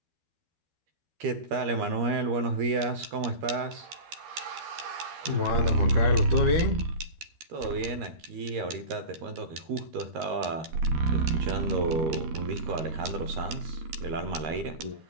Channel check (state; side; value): late; left; 13 ms